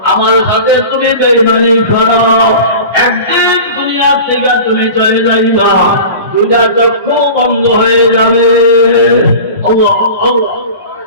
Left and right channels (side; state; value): both; inverted; correlation -0.35